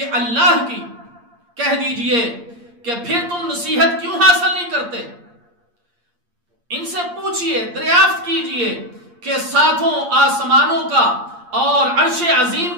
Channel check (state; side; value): late; left; 8.6 ms